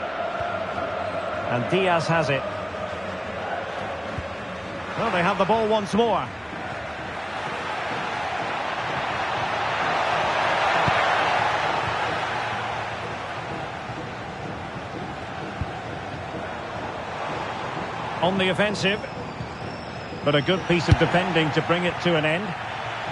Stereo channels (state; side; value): identical; both; correlation 1.00